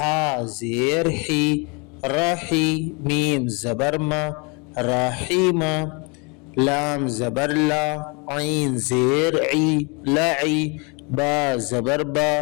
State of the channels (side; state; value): right; quieter; 31.6 dB